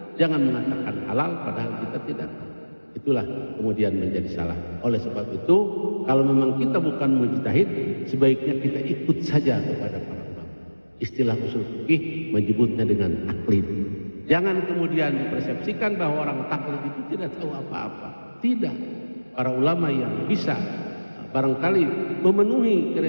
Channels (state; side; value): inverted; both; correlation -1.00